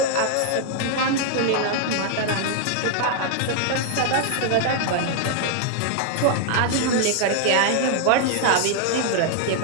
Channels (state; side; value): different; both; correlation 0.00